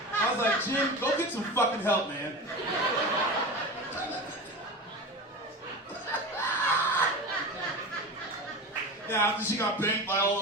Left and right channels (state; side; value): normal; both; correlation 0.28